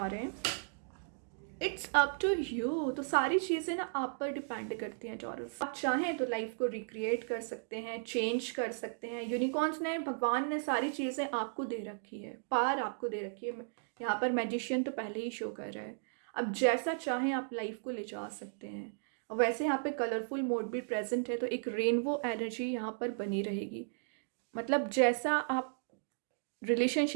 रहे हैं। It's up to you. तो सारी चीज़ें ना आप पर डिपेंड करती हैं टॉरस। आप चाहें तो लाइफ को रिक्रिएट कर सकते हैं, चेंज कर सकते हैं। यूनिकॉर्न्स ने, भगवान ने सारी चीज़ें आपको दे रखी है, पार आपको दे रखी है। यहाँ पर मैजिशियन तो पहले ही शो कर रहा है। अब जैसा चाहें आप लाइफ को ले जा सकते हैं। और वैसे यहाँ पे कलरफुल मोड भी प्रेजेंट है, तो एक रेनबो एनर्जी यहाँ पर बनी रहेगी। मतलब जैसा आप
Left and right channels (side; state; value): left; silent; digital silence